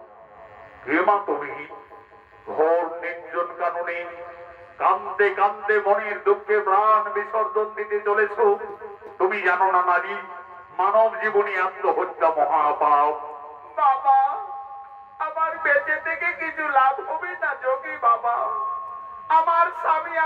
কান্দে কান্দে মনের দুঃখে প্রাণ বিসর্জন দিতে চলেছ। তুমি জানো না নারী, মানব জীবনী আত্মহত্যা মহাপাপ। বাবা, আমার বেঁচে থেকে কিছু লাভ হবে না যোগী বাবা। আমার স্বামী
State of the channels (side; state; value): both; identical; correlation 1.00